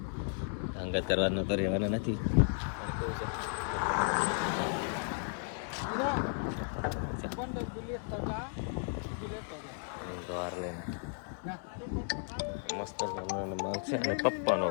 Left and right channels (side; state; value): right; silent; 55 dB below the other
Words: અંગત કરવાનો તો રહેવાના નથી. દ્વાર લઈને મસ્ત માલ છે અને પપ્પાનો